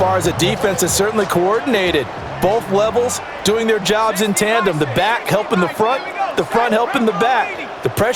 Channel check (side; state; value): both; identical; correlation 1.00